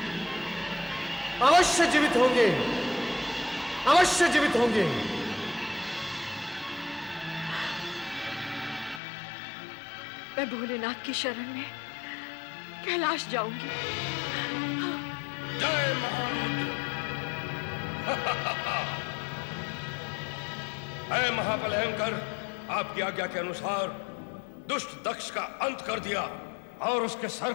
अवश्य जीवित होंगे। अवश्य जीवित होंगे। मैं भोलेनाथ की शरण में कैलाश जाऊंगी। जय महारुद्र। है महाबलयंकर, आपकी आज्ञा के अनुसार दुष्ट दक्ष का अंत कर दिया और उसके सर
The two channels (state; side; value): drops out; right; at 9.0 s